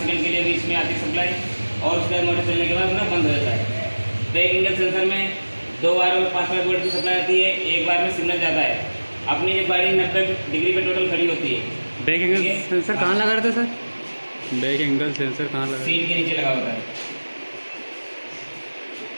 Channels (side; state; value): both; inverted; correlation -1.00